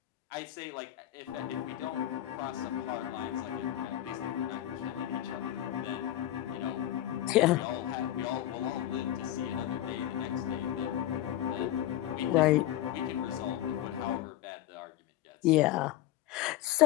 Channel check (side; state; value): right; quieter; 13.1 dB